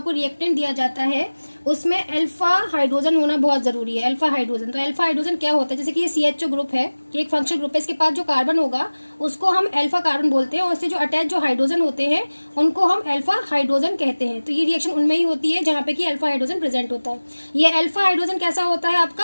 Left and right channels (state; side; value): inverted; both; correlation -1.00